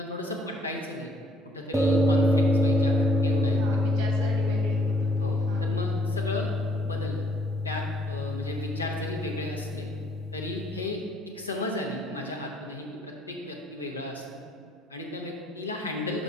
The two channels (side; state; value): both; normal; correlation 0.65